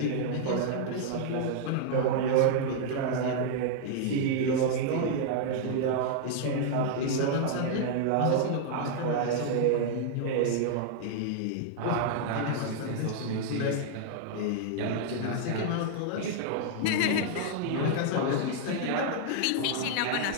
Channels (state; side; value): different; both; correlation -0.01